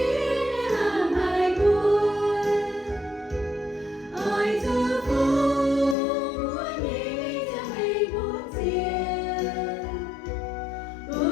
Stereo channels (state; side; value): drops out; right; at 6.0 s